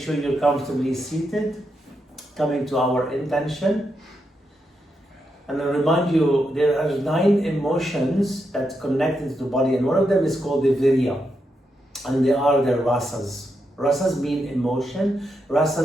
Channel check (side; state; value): both; normal; correlation 0.83